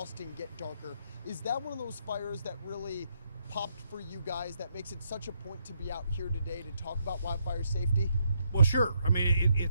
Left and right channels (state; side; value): inverted; both; correlation -0.76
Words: get darker. Is that one of those fires that really popped for you guys, that makes it such a point to be out here today to talk about wildfire safety? Well, sure. I mean,